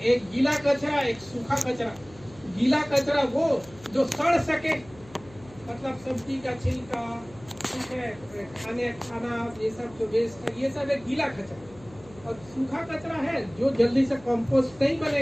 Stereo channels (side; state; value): left; noise; hum, 22 dB below the sound